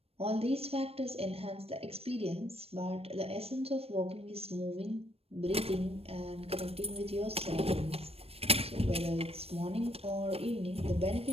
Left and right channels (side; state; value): left; late; 0.28 ms